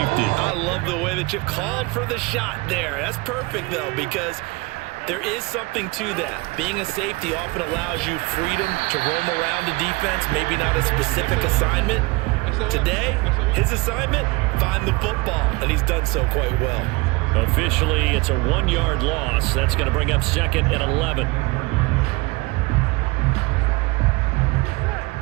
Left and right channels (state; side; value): quieter; left; 24.7 dB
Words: I love the way that you called for the shot there. That's perfect, though, because there is something to that. Being a safety often allows you freedom to roam around the defense, maybe not a specific assignment. Today, his assignment, find the football, and he's done so quite well. Officially, it's a 1-yard loss. That's going to bring up 2nd and 11.